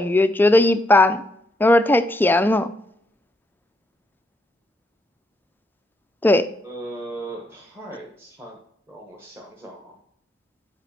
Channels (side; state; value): both; normal; correlation 0.78